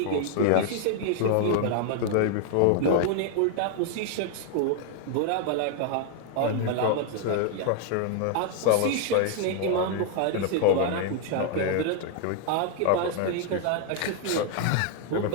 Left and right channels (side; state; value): both; different; correlation 0.00